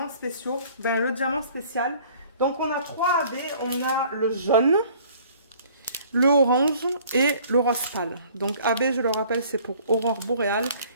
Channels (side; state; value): both; inverted; correlation -0.54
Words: spéciaux. Ben, le diamant spécial. Donc on a 3 AB. On a le jaune, le orange et le rose pâle. Donc AB, je le rappelle, c'est pour aurore boréale.